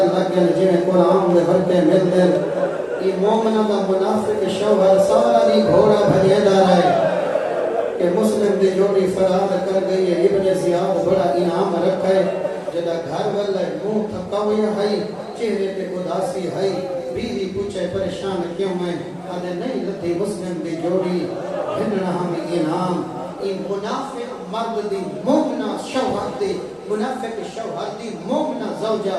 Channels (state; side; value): identical; both; correlation 1.00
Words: جنہیں قرآن دے برکے مل دن ای مومنہ دا منافق شوہر ساری گھوڑا بھجے دا رہے کہ مسلم دی جوڑی فراد کر گئی ہے ابن زیاد بڑا انعام رکھے جدا گھر والے منہ تھکاوی ہے چہرے پہ اداسی ہے بیوی پوچھے پریشان کیوں میں آدھے نہیں لدھی مسلم دی جوڑی ہننا ہمیں انعام این منافق مرد دی مومنہ شوہر دی منافق شوہر دی مومنہ زوجہ